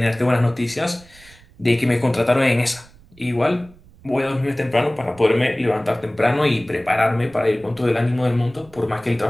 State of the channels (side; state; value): right; noise; rumble, 25 dB below the sound